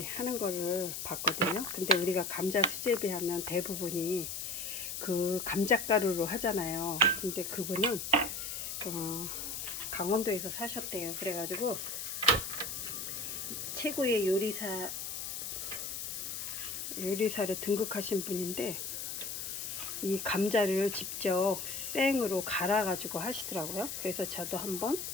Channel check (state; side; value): noise; left; hiss, 5 dB below the sound